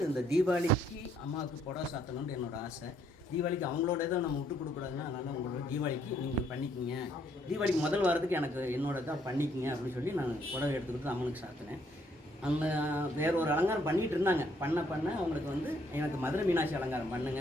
இந்த தீபாவளிக்கு அம்மாவுக்கு புடவை சாத்தணும்னு என்னோடய ஆசை. தீபாவளிக்கு அவங்களோட இதை நம்ம விட்டு கொடுக்கூடாதுன்னா, அதனால் உங்களோட தீபாவளிக்கு நீங்கள் பண்ணிக்கிங்க, தீபாவளிக்கு முதல் வாரத்துக்கு எனக்கு என்னோட தான் பண்ணிக்கிங்க அப்படின்னு சொல்லி நான் புடவை எடுத்துக்கிட்டு அம்மனுக்கு சாத்தினேன். அந்த வேற ஒரு அலங்காரம் பண்ணிகிட்டு இருந்தாங்க. பண்ண அவங்களுக்கு வந்து எனக்கு மதுரை மீனாட்சி அலங்காரம் பண்ணுங்க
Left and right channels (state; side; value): normal; both; correlation 0.69